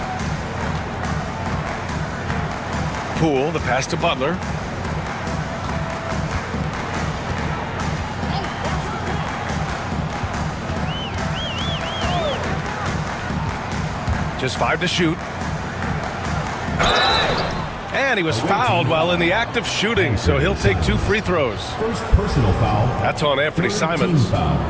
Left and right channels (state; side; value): identical; both; correlation 1.00